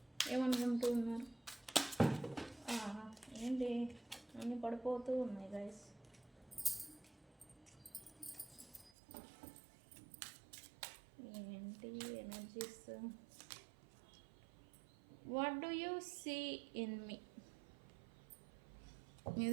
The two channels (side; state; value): left; drops out; at 8.9 s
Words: ఏమనుకుంటూ ఉన్నారు? ఏంటి అన్నీ పడిపోతూ ఉన్నాయి గైస్. ఏంటి energies? What do you see in me?